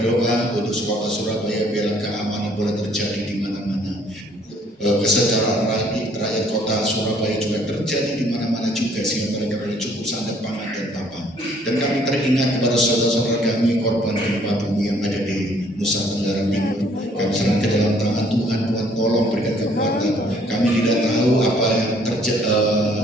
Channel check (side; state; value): both; normal; correlation 0.61